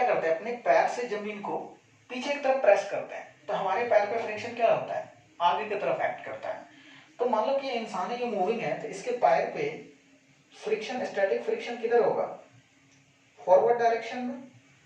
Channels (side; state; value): both; identical; correlation 1.00